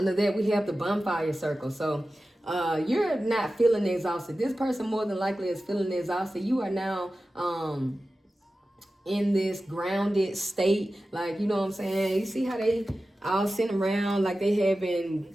that, we have the bonfire circle. So you're not feeling exhausted. This person more than likely is feeling exhausted. You are now in this grounded state. Like, you know what I'm saying? You see how they all sitting around like they having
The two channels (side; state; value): both; normal; correlation 0.94